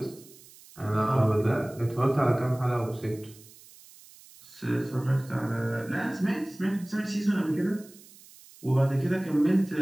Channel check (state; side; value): noise; right; hiss, 22 dB below the sound